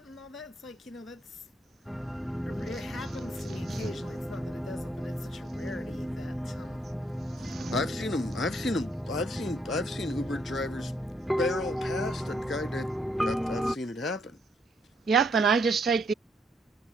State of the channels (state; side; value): normal; both; correlation 0.72